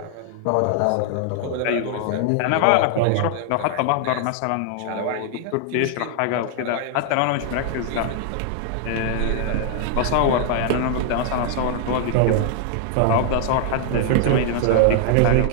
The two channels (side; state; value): both; different; correlation 0.00